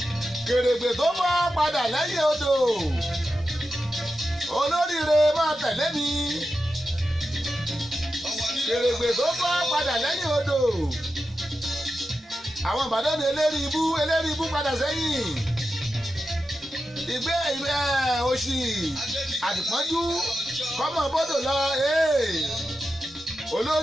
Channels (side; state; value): both; normal; correlation 0.90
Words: kèrègbè tó mọ́ padà lẹ́yìn odò olóríire máa tẹ̀lé mi kèrègbè tó mọ́ padà lẹ́yìn odò àwọn Ìbàdàn ní eléri ibú padà sẹ́yìn ìgbé òṣì àdìpọ́njú kọ́mọ bọ́dọ̀ lọ